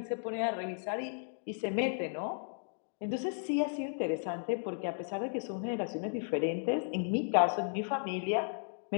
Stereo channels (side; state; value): right; silent; digital silence